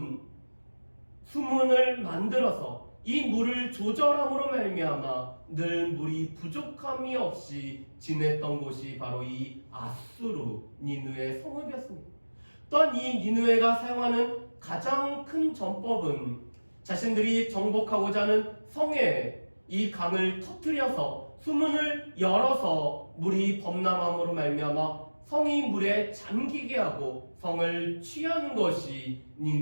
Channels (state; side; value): inverted; both; correlation -1.00